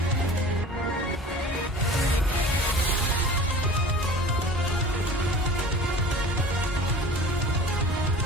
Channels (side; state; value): both; normal; correlation 0.41